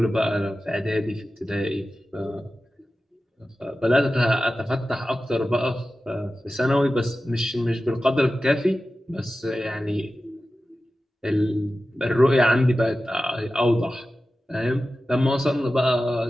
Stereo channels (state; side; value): normal; both; correlation 0.94